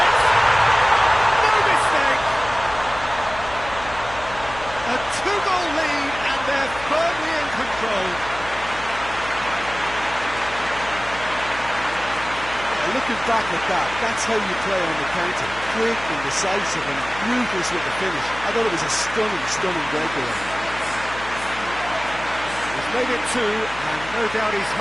No mistake. A two-goal lead, and they're firmly in control. Looking back at that, that's how you play on the counter. Quick and decisive and ruthless with the finish. I thought it was a stunning, stunning breakaway. He's made it two, and no doubt he's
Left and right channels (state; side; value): noise; left; hum, 15 dB below the sound